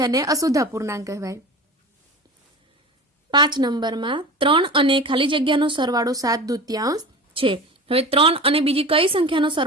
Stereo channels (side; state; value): both; normal; correlation 0.33